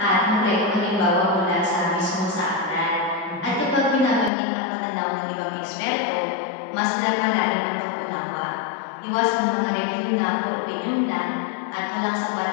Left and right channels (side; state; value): right; drops out; at 4.3 s